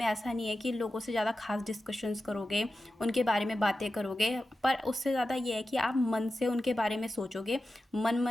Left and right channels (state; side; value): normal; both; correlation 0.93